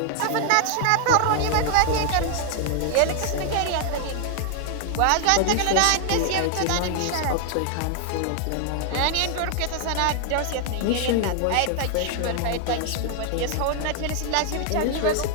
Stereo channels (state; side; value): different; both; correlation 0.00